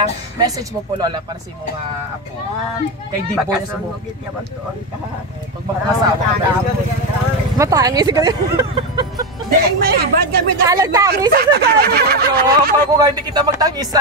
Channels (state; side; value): normal; both; correlation 0.12